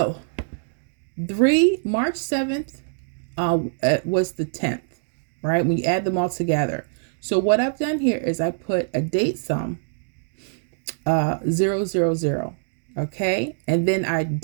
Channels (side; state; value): left; silent; digital silence